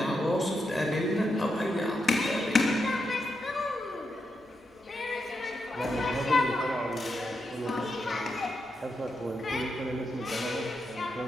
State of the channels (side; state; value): both; normal; correlation 0.84